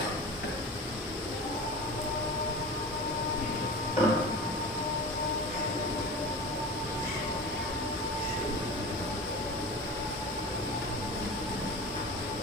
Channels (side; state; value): both; normal; correlation 0.34